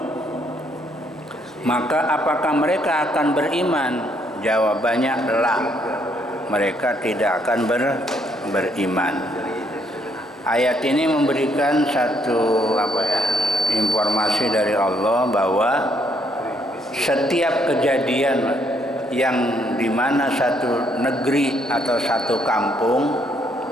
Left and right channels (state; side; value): normal; both; correlation 0.70